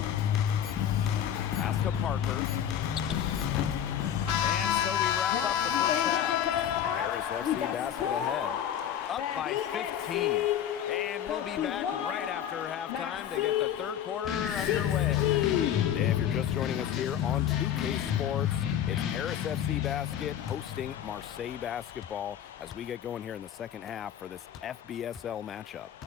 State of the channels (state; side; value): quieter; right; 9.9 dB